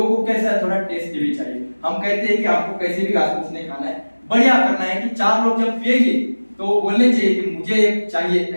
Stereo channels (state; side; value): inverted; both; correlation -1.00